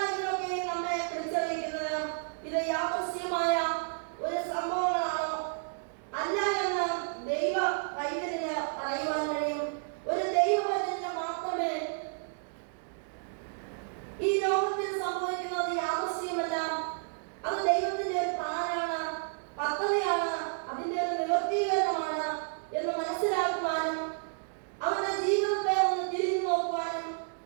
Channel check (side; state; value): left; silent; digital silence